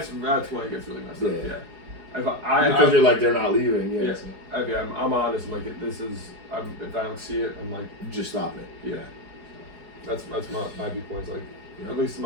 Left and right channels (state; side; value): late; left; 4.8 ms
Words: when it gets really messed up. Yeah. Because you're like, they're not leaving. Yeah. Yeah. So. Okay, I'm honest. I'm like, this is. If I don't see it, I'm like. Just stop it. Yeah. That's my viewpoint. Like, Yeah. at least in